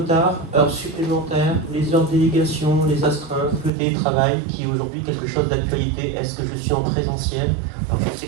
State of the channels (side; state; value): left; drops out; at 3.7 s